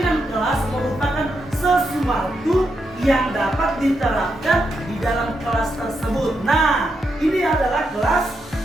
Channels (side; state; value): both; normal; correlation 0.83